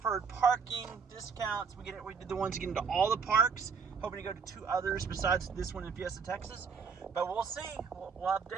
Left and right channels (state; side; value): quieter; left; 5.8 dB